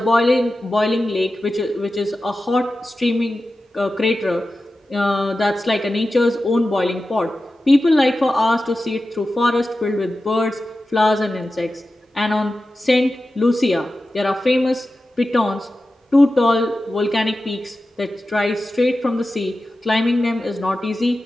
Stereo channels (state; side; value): normal; both; correlation 0.93